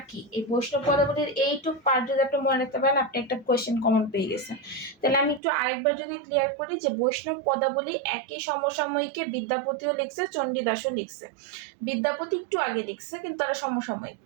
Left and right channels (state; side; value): drops out; left; at 5.4 s